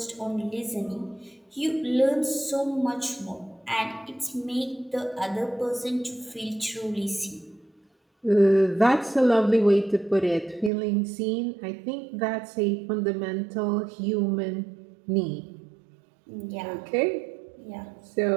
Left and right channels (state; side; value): drops out; left; at 10.7 s